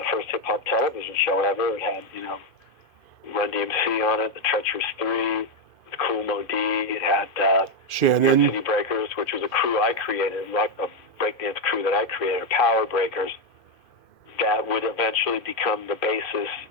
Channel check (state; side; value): late; right; 2.5 ms